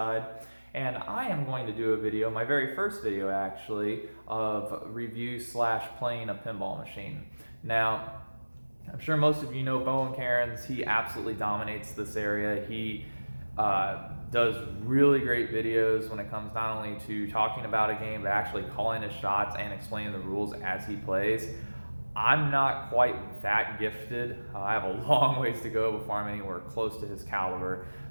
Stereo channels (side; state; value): both; inverted; correlation -1.00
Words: and I am going to do a video, my very first video actually, of review slash playing a pinball machine. Now, I'm sure most of you know Bowen Cairns. He absolutely dominates this area. He does really great videos when it comes not only to talking about a game, but actually calling his shots and explaining the rules as he plays. I'm not quite that gifted. I have a long ways to go before I'm anywhere close to his caliber.